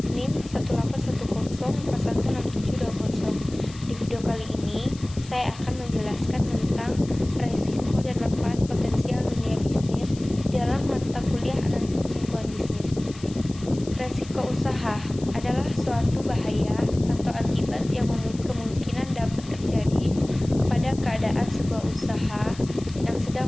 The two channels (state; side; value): noise; left; hiss, 19 dB below the sound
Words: NIM 18104167720. Di video kali ini, saya akan menjelaskan tentang resiko dan manfaat potensial dunia bisnis dalam mata kuliah analisis lingkungan bisnis. Resiko usaha adalah suatu bahaya atau akibat yang kemungkinan dapat terjadi pada keadaan sebuah usaha yang sedang